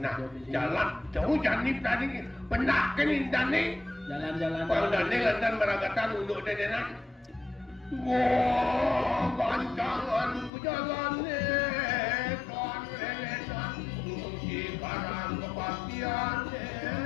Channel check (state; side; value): drops out; right; at 10.5 s